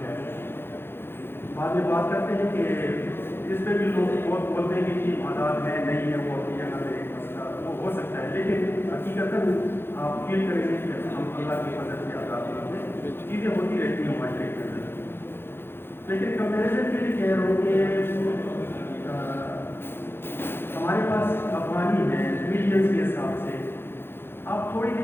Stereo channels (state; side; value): late; right; 0.11 ms